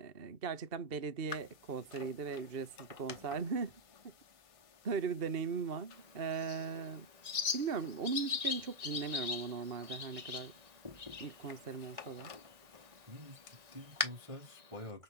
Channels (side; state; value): left; late; 1.9 ms